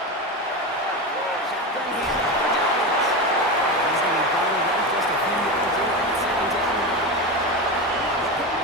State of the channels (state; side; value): normal; both; correlation 0.20